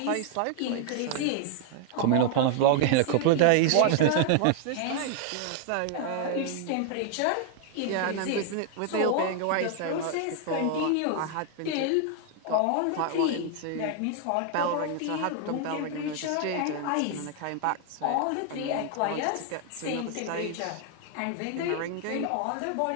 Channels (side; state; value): both; different; correlation 0.00